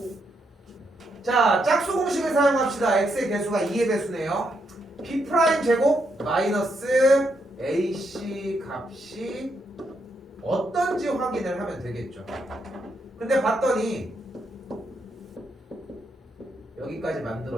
자, 짝수 공식을 사용합시다. x의 개수가 2의 배수네요. B' 제곱 마이너스 AC 값이 어떤지 확인을 하면 되겠죠. 근데 봤더니 여기까지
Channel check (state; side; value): normal; both; correlation 0.79